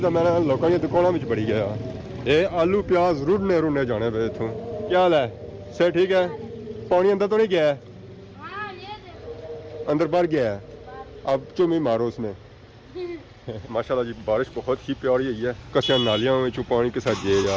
तो मैंने लोगों की दुकानों में बड़ी गया ये आलू प्याज रुड़ने जाने पे इतों क्या हाल है सर ठीक है पानी अंदर तो नहीं गया है अंदर बाहर गया है अब चुमी मारो उसमें। माशाल्लाह जी बारिश बहुत ही प्यारी हुई है कसिया नालियां में पानी के साथ जे जा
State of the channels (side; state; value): both; identical; correlation 1.00